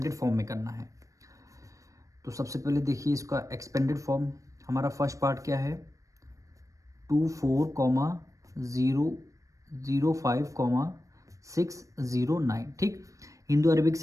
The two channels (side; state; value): left; late; 0.16 ms